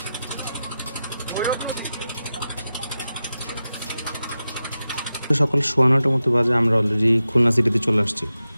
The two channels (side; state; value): both; inverted; correlation -0.92